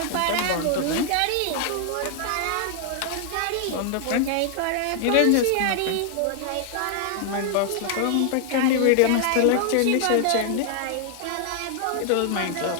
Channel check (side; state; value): both; different; correlation 0.00